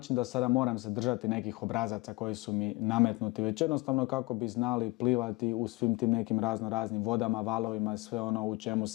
da sada moram se držati nekih obrazaca koji su mi nametnuti, već jednostavno kako bi znali plivati u svim tim nekim raznim vodama, valovima, sve ono u čemu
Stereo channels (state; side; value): quieter; right; 23.3 dB